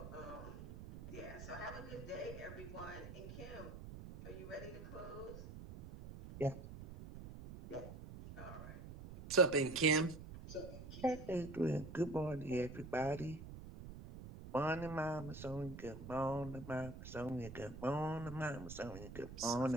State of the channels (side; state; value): right; noise; rumble, 11 dB below the sound